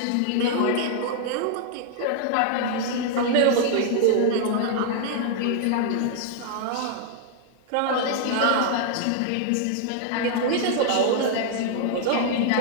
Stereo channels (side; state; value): both; different; correlation 0.00